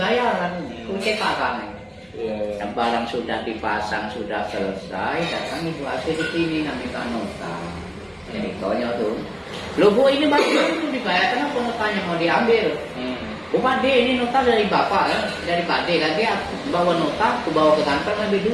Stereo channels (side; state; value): both; identical; correlation 1.00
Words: kan kunci pasang Iya. yang barang sudah dipasang sudah selesai datang Ibu AC di sini minta nota jadi tanya tuh lo Bu ini barang itu dibayar kenapa notanya mau diambil Bu Pak D ini nota dari Bapak ya, dari Pak D kan dia bawa nota, aku bawa ke kantor ngambil